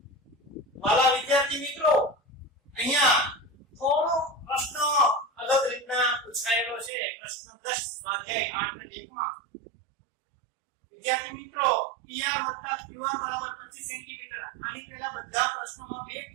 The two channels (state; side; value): drops out; left; at 6.9 s